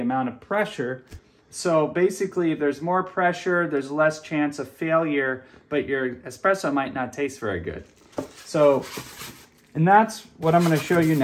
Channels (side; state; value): both; identical; correlation 1.00